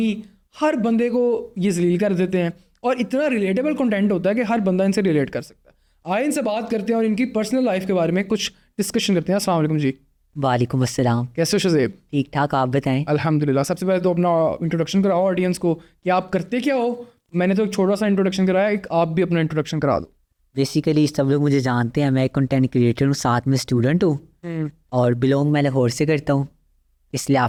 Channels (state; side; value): identical; both; correlation 1.00